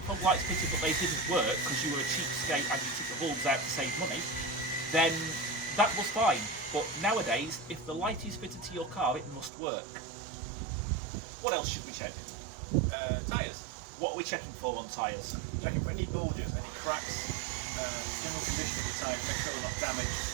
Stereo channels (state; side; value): drops out; left; at 9.5 s